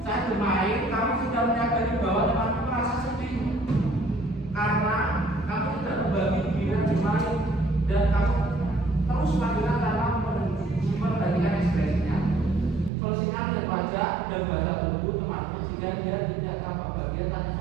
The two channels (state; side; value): drops out; left; at 12.9 s